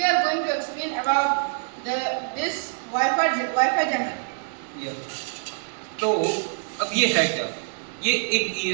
are going to explain about this Wi-Fi jammer. Yeah. तो अब ये है क्या? ये एक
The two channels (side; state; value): left; silent; digital silence